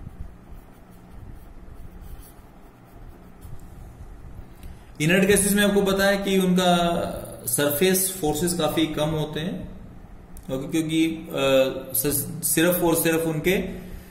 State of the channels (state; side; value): identical; both; correlation 1.00